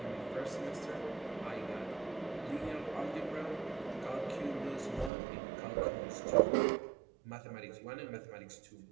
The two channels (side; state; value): left; drops out; at 5.1 s